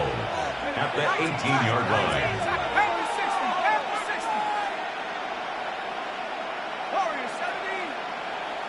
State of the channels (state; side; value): identical; both; correlation 1.00